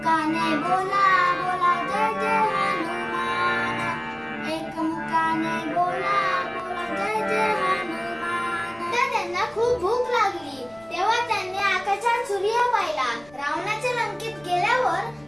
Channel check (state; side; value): noise; left; rumble, 26 dB below the sound